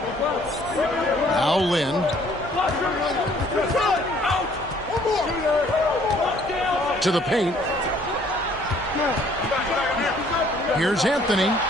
Now Lynn. to the paint. Here's Anthony.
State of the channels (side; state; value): both; normal; correlation 0.60